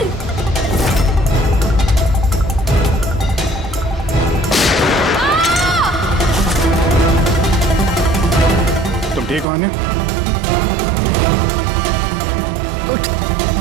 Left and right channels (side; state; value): left; drops out; at 9.5 s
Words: तुम ठीक हो आन्या? उठ।